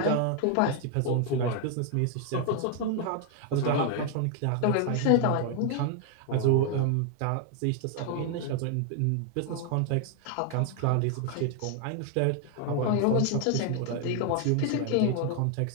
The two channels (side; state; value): both; different; correlation 0.00